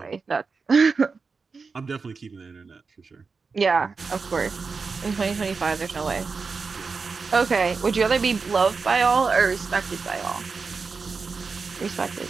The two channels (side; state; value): left; quieter; 4.7 dB